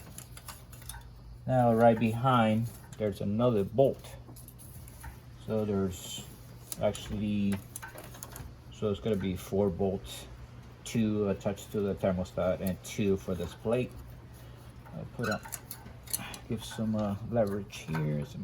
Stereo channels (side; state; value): both; identical; correlation 1.00